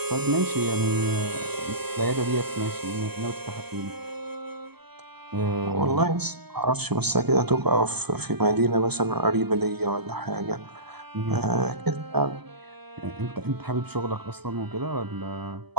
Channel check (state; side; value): late; left; 0.97 ms